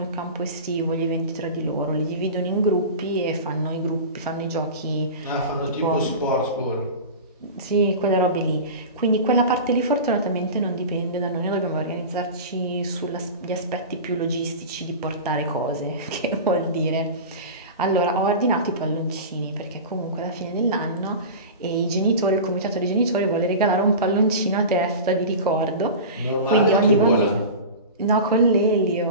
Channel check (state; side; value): inverted; both; correlation -0.30